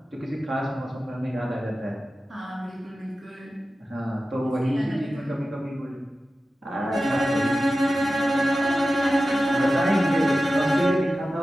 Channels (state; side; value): normal; both; correlation 0.94